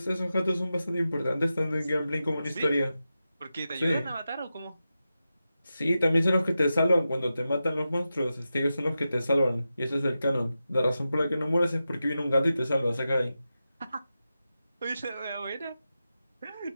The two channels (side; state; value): both; inverted; correlation -0.91